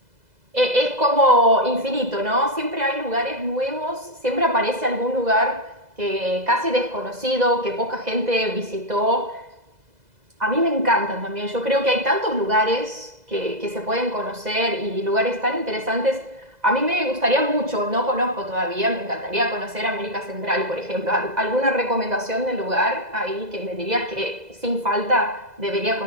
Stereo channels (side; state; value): left; late; 2.0 ms